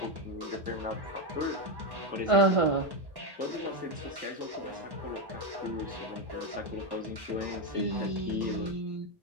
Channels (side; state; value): left; late; 1.1 ms